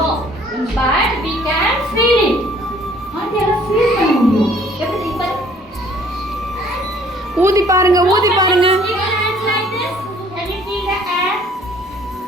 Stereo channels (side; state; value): both; normal; correlation 0.57